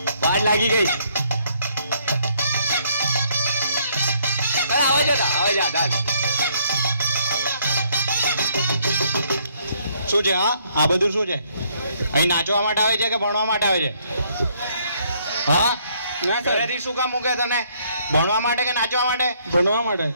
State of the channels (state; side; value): inverted; both; correlation -0.68